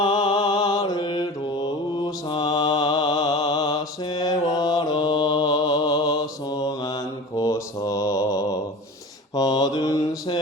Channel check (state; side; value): normal; both; correlation 0.36